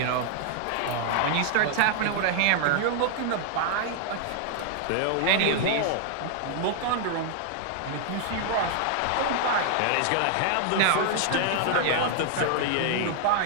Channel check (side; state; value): both; different; correlation 0.00